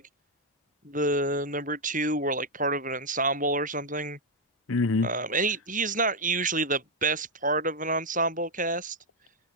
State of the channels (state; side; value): normal; both; correlation 0.00